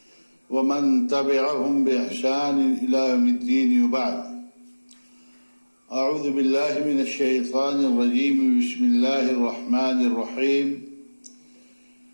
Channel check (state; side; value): inverted; both; correlation -1.00